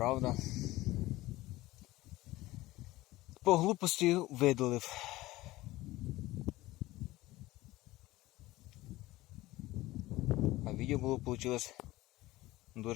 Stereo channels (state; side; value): quieter; right; 18.0 dB